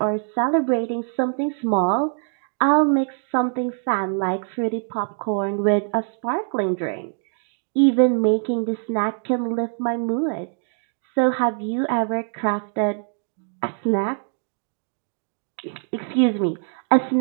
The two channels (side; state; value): left; silent; 60 dB below the other